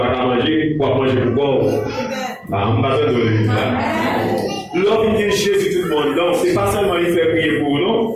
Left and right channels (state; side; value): identical; both; correlation 1.00